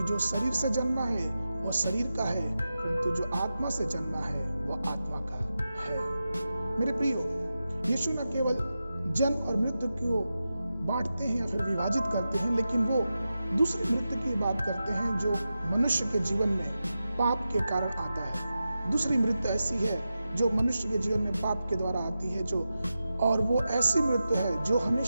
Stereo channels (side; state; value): both; inverted; correlation -0.91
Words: जो शरीर से जन्मा है वो शरीर का है, परंतु जो आत्मा से जन्मा है वो आत्मा का है। मेरे प्रियो, यीशु न केवल जन्म और मृत्यु को बांटते हैं या फिर विभाजित करते हैं, लेकिन वो दूसरी मृत्यु की बात करते हैं जो मनुष्य के जीवन में पाप के कारण आता है। दूसरी मृत्यु ऐसी है जो मनुष्य के जीवन में पाप के द्वारा आती है, और वो ऐसी मृत्यु है जो